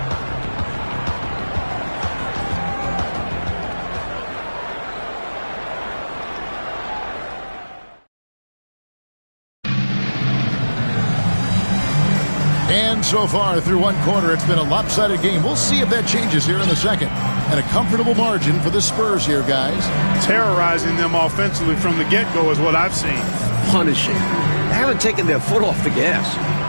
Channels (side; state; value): both; inverted; correlation -1.00